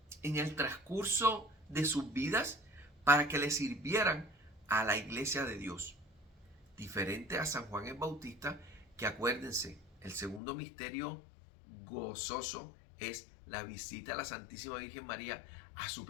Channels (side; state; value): right; drops out; at 10.4 s